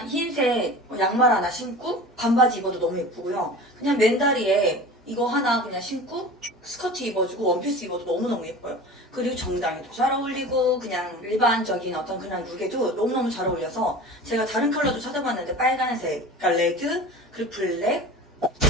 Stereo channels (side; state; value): both; normal; correlation 0.36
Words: 흰색 양말 하나 신고 반바지 입어도 너무 예쁘고요. 그냥 맨다리에 이거 하나 그냥 신고 스커트 입어주고 원피스 입어도 너무너무 예뻐요. 그리고 정장에도 잘 어울리고 그냥 일반적인 어떤 그런 룩에도 너무너무 잘 어울려서 제가 다른 컬러도 찾아봤는데 빨간색, 그러니까 레드, 그리고 블랙.